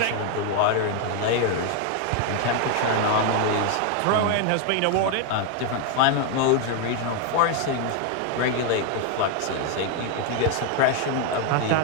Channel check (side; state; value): both; different; correlation 0.01